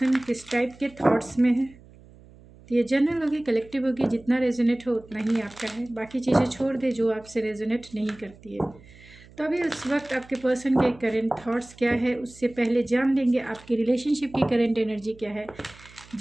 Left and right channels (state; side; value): noise; right; hum, 23 dB below the sound